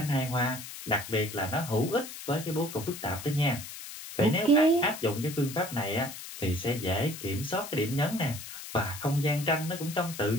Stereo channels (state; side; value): noise; left; hiss, 11 dB below the sound